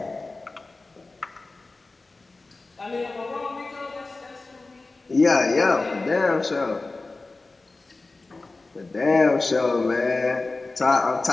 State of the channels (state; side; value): quieter; right; 3.4 dB